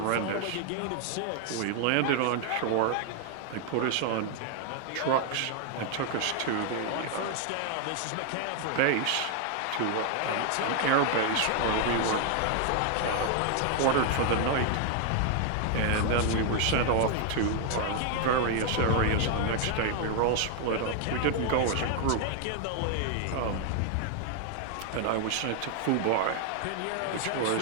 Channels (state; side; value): different; both; correlation 0.00